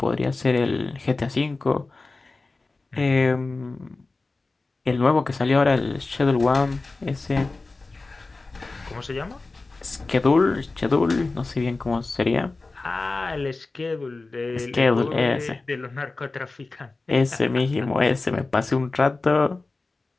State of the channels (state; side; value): quieter; right; 3.5 dB